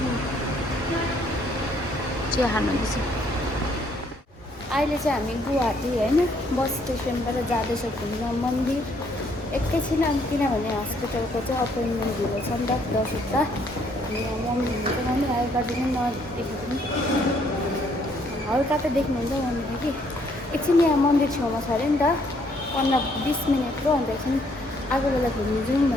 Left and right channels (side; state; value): both; normal; correlation 0.67